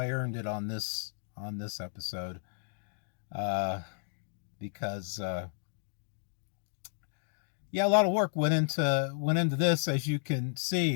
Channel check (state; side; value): silent; right; digital silence